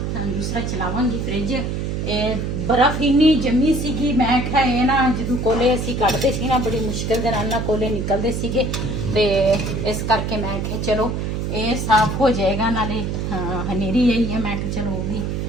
दूसरा चलावांगी फ्रिज। बर्फ इन्नी जमी सीगी, मैं आख्या ये ना जो कोले असीं कढ़दे सी ना बड़ी मुश्किल दे नाल ना कोले निकलदे सीगे, ते इस करके मैं आख्या चलो ये साफ हो जाएगा। नाले हनेरी आई है, मैं आख्या चलो वो भी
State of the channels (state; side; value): noise; right; hum, 2 dB below the sound